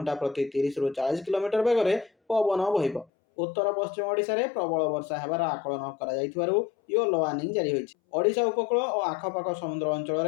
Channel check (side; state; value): right; drops out; at 3.1 s